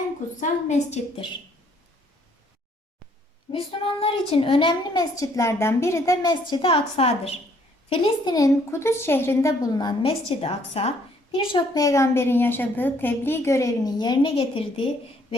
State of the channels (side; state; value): both; normal; correlation 0.65